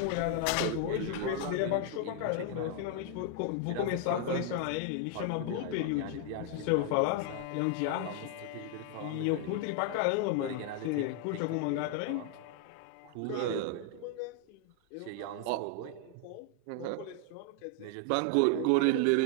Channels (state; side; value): different; both; correlation 0.00